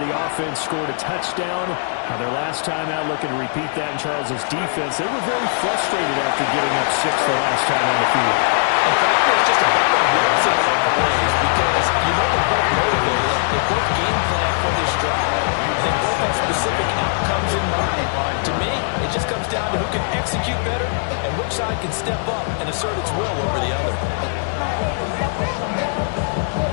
offense scored a touchdown. Their last time out, looking to repeat that in Charles's defense. They were very frustrated after giving up 6 the last time on the field. In fact, there's just a battle of wills in a lot of ways because you know they're both motivated. They both game plan for this drive. And they both have specific outcomes in mind. To me, it just comes down to who can execute better and which side can step up and assert its will over the other.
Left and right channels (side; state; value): right; silent; 66 dB below the other